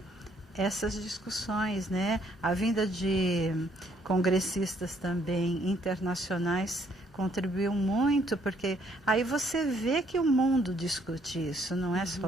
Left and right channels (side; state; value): both; normal; correlation 0.67